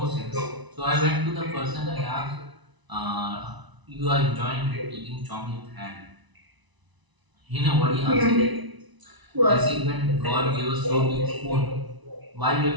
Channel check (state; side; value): late; left; 1.0 ms